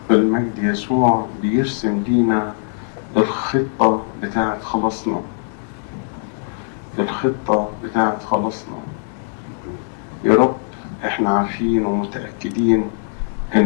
المجد يسوع بيرسم لينا الخطة بتاعت خلاصنا، الخطة بتاعت خلاصنا. يا رب احنا عارفين ومتأكدين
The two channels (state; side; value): silent; right; 62 dB below the other